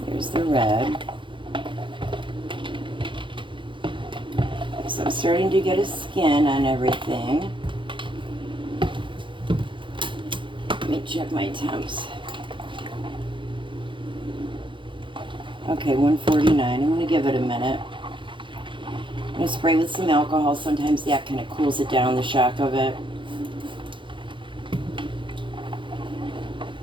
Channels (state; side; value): late; left; 0.24 ms